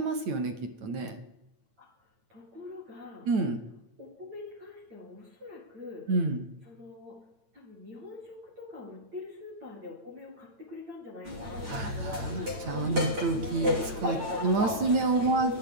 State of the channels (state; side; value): late; left; 9.0 ms